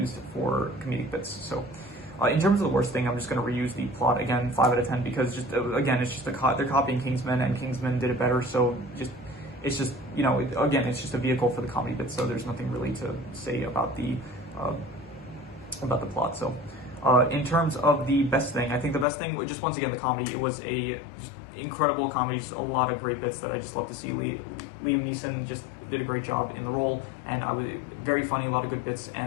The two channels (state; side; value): drops out; right; at 19.1 s